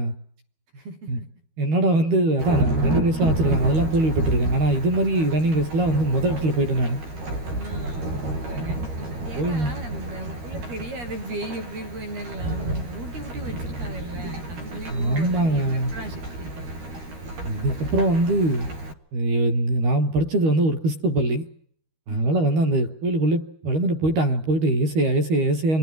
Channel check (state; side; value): late; left; 13 ms